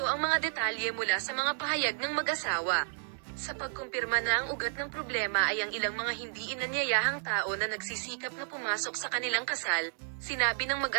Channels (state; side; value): silent; left; digital silence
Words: ang mga detalye mula sa mga pahayag ng mag-asawa. Sa pagkumpirma na ang ugat ng problema ay ang ilang mga hindi inanyayahang tao na nagsisikap na pumasok sa kanilang kasal, sinabi ng